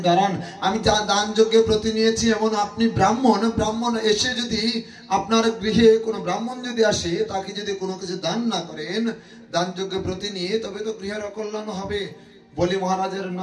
দাঁড়ান। আমি দান যজ্ঞে ব্রতী নিয়েছি, এমন আপনি ব্রাহ্মণ এসে যদি আপনার গৃহে কোনো ব্রাহ্মণ যদি আসে, তাকে যদি কোনো কিছু দান না করেন, দান যজ্ঞে ব্রতী নিয়ে, তবে তো গৃহের অকল্যাণ হবে। বলি মহারাজের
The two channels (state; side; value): identical; both; correlation 1.00